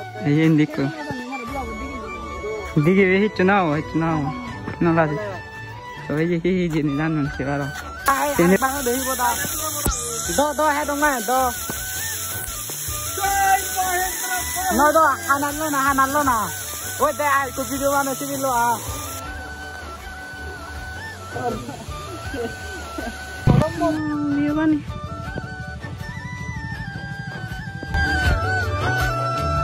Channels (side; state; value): both; identical; correlation 1.00